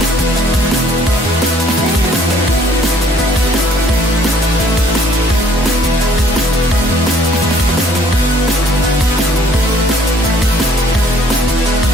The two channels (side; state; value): both; normal; correlation 0.60